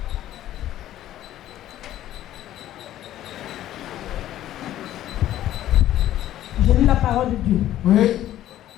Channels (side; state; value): right; quieter; 13.0 dB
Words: Je lis la parole de Dieu. Oui.